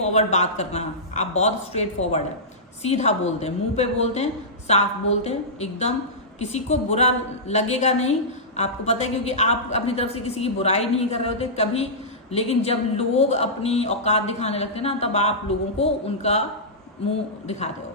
बात करना, आप बहुत स्ट्रेट फॉरवर्ड है, सीधा बोलते हैं, मुंह पे बोलते हैं, साफ बोलते हैं, एकदम किसी को बुरा लगेगा नहीं, आपको पता है, क्योंकि आप अपनी तरफ से किसी की बुराई नहीं कर रहे होते कभी। लेकिन जब लोग अपनी औकात दिखाने लगते हैं ना, तब आप लोगों को उनका मुंह दिखाते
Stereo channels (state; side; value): normal; both; correlation -0.16